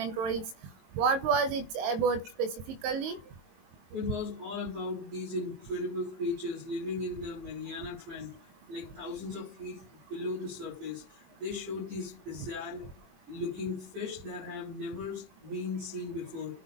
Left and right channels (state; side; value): late; left; 22 ms